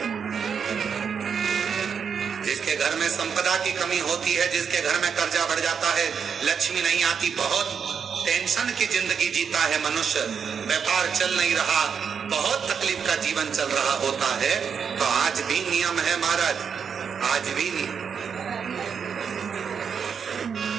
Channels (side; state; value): left; quieter; 6.7 dB